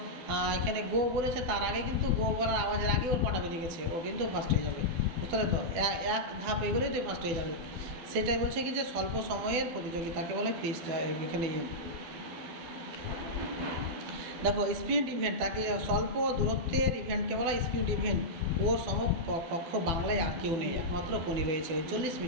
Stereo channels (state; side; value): late; left; 12 ms